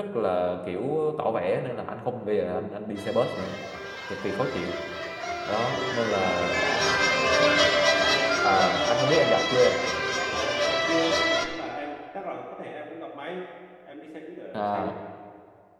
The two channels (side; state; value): both; identical; correlation 1.00